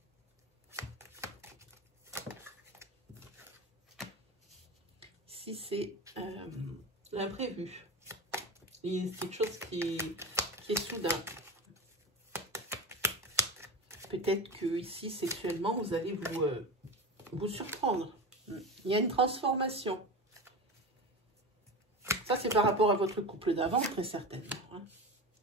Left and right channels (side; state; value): both; normal; correlation 0.25